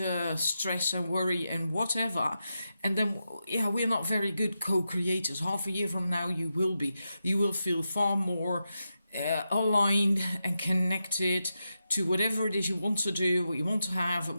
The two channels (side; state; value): both; inverted; correlation -0.88